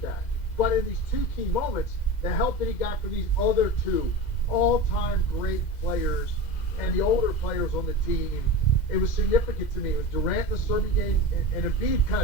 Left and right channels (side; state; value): right; late; 2.1 ms